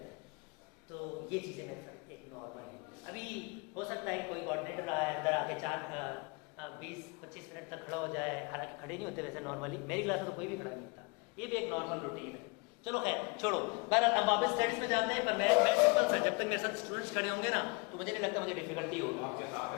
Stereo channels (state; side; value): quieter; right; 29.9 dB